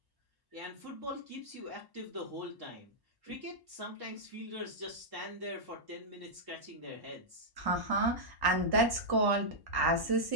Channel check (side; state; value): left; late; 1.1 ms